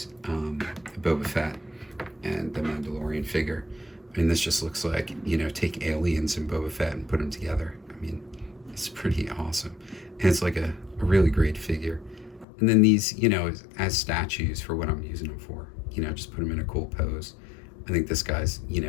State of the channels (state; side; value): drops out; right; at 12.5 s